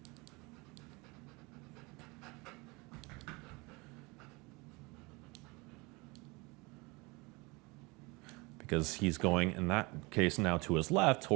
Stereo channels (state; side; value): quieter; left; 26.0 dB